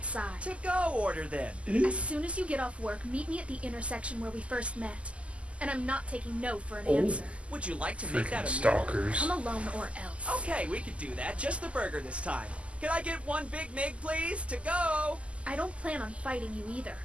To go order then. As soon as you get off work, meet me at the intersection where we first met. And I'm not taking no for an Oh. answer. Would you like to make Freaking that a meal? stalkers. Come alone or else. Okay, we could do that. Just the burger this time. Can I get one Big Mig, please? To go. I don't plan on fighting you either.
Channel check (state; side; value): late; left; 0.059 ms